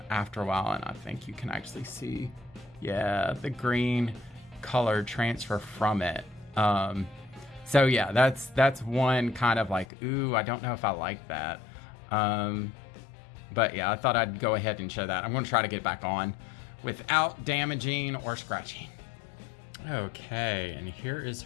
a while. And I think you can actually see, yeah, the green color transfer from it. So yeah, that's one kind of like, ooh, I don't know if I like that. But yeah, I thought I'd go ahead and show that. I'm going to try to get back on without damaging or scratching. Okay, and here is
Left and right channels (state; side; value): drops out; right; at 9.9 s